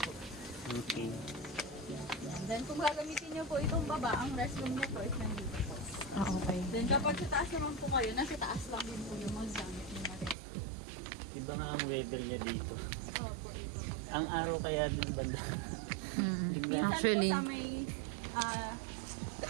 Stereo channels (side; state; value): left; drops out; at 10.4 s